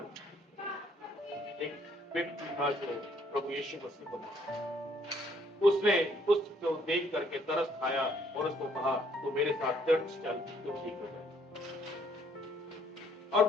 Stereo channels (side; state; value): both; normal; correlation 0.65